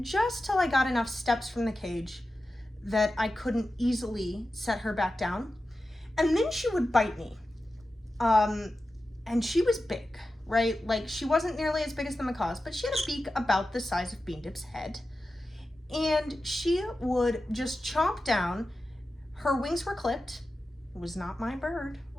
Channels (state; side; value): normal; both; correlation 0.93